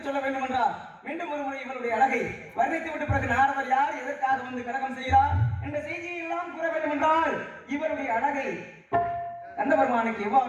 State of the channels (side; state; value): both; identical; correlation 1.00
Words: சொல்ல வேண்டும் என்றால் மீண்டும் ஒரு முறை இவருடைய அழகை வர்ணித்து விட்ட பிறகு நாரதர் யார், எதற்காக வந்து கலகம் செய்கிறார் என்ற செய்தியை எல்லாம் கூற வேண்டும் என்றால் இவருடைய அழகை கண்ட பெருமானுக்கு